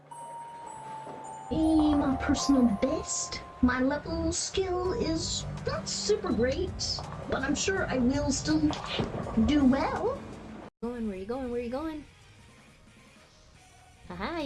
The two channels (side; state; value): both; identical; correlation 1.00